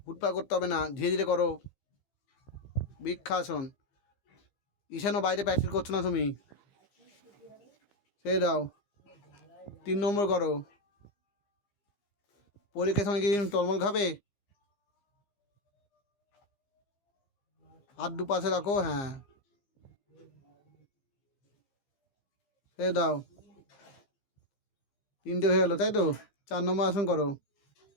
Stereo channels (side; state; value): right; late; 15 ms